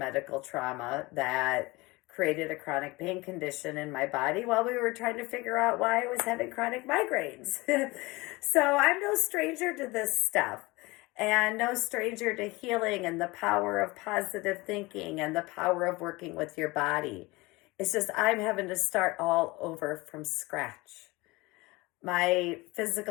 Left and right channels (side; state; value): right; quieter; 22.7 dB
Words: trauma that created a chronic pain condition in my body while we were trying to figure out why I was having chronic migraines. So I'm no stranger to this stuff. And no stranger to healing and the power of positive thinking and the power of working with your body. It's just I'm having to start all over from scratch. My